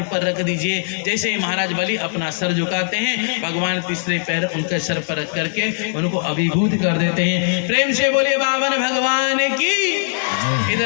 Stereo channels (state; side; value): silent; right; digital silence